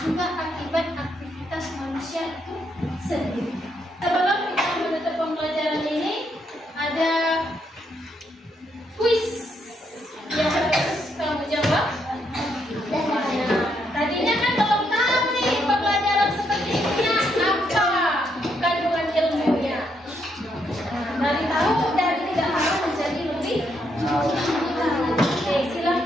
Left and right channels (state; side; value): normal; both; correlation 0.76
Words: akibat aktivitas manusia itu sendiri. Sebelum kita menutup pembelajaran ini, ada kuis yang harus kamu jawab. Tadinya kan belum tahu nih pembelajaran seperti ini apa kandungan ilmunya. Dari tahu dari tidak tahu menjadi lebih. Oke,